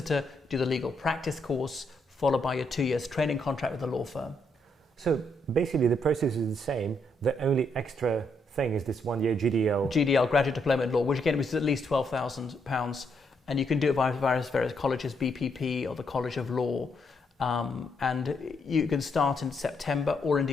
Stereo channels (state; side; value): normal; both; correlation 0.76